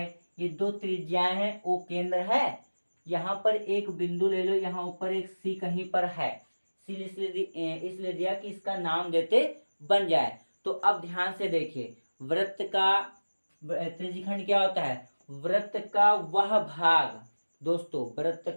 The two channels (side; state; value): both; inverted; correlation -1.00